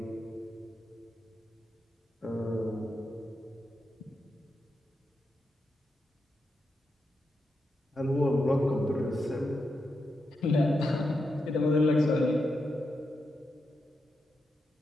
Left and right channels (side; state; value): both; normal; correlation 0.86